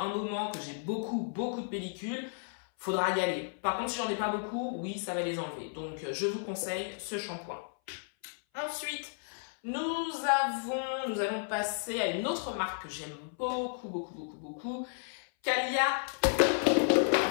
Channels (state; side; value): silent; right; 56 dB below the other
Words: moment, que j'ai beaucoup de pellicules, faudra y aller. Par contre, si j'en ai pas beaucoup, oui, ça va les enlever. Donc, je vous conseille ce shampoing. Ensuite, nous allons passer à une autre marque que j'aime beaucoup. Calia.